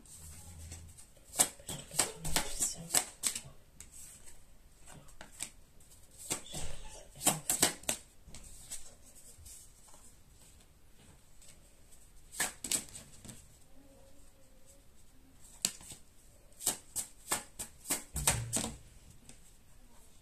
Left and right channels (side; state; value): both; identical; correlation 1.00